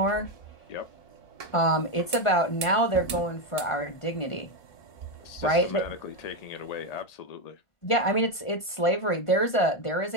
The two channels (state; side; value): late; right; 1.5 ms